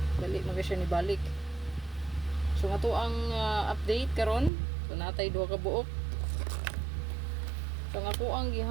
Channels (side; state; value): left; drops out; at 4.5 s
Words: Balik man siya ni balik. So ato ang update karon. So natay duha ka buok. So ako ang